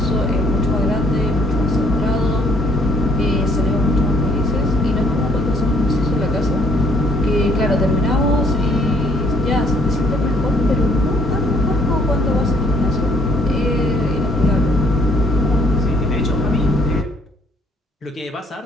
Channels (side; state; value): both; normal; correlation 0.64